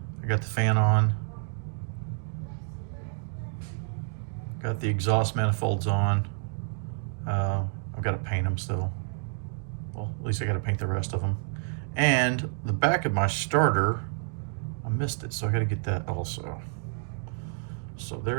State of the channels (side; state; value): left; silent; 59 dB below the other